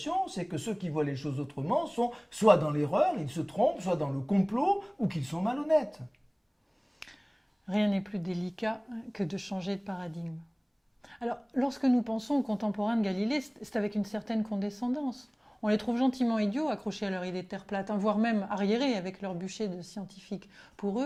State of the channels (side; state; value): both; identical; correlation 1.00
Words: c'est que ceux qui voient les choses autrement sont soit dans l'erreur, ils se trompent, soit dans le complot, ou qu'ils sont malhonnêtes. Rien n'est plus délicat que de changer de paradigme. Alors, lorsque nous pensons aux contemporains de Galilée, c'est avec une certaine condescendance. On les trouve gentiment idiots, accrochés à leur idée de terre plate, voire même arriérés avec leur bûcher de scientifiques. Pour